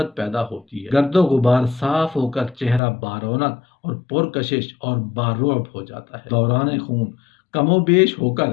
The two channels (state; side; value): drops out; right; at 2.8 s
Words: پیدا ہوتی ہے۔ گرد و غبار صاف ہو کر چہرہ بارونق اور پرکشش اور بارعب ہو جاتا ہے۔ دوران خون کم و بیش ہو کر